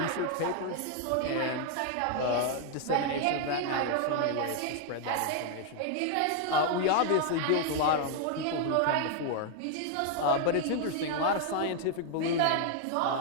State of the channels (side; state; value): both; different; correlation 0.00